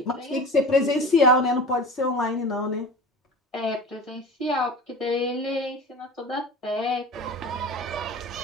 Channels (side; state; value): both; normal; correlation 0.35